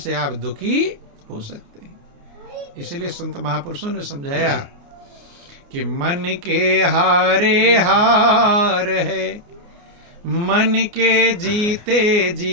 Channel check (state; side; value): late; left; 29 ms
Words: आप दुखी हो सकते हैं। इसलिए संत महापुरुषों ने समझाया कि मन के हारे हार है, मन के जीते